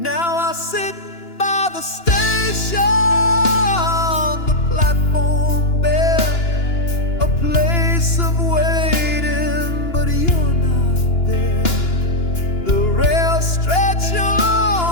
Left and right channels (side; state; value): right; late; 2.9 ms